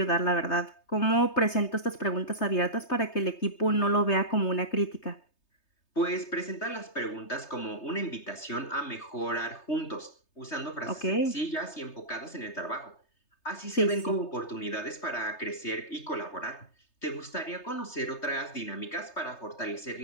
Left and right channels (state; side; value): late; right; 3.3 ms